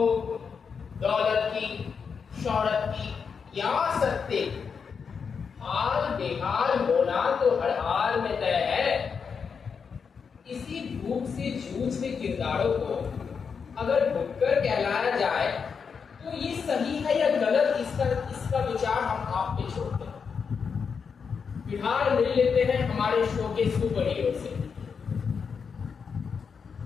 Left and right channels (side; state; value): right; quieter; 6.0 dB